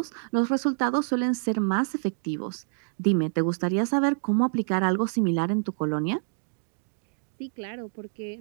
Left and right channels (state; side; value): silent; left; digital silence